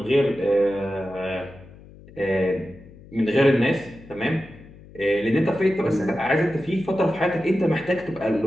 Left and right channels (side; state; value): left; noise; hum, 21 dB below the sound